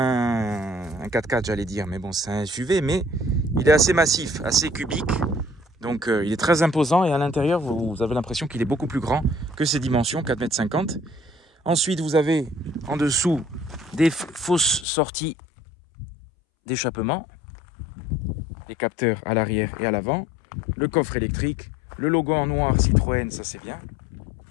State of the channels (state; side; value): drops out; right; at 14.9 s